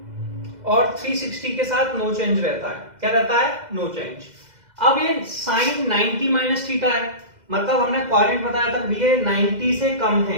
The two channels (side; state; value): left; late; 2.0 ms